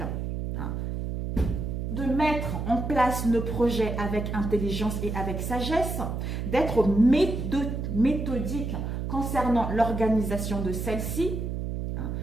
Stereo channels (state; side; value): noise; right; hum, 3 dB below the sound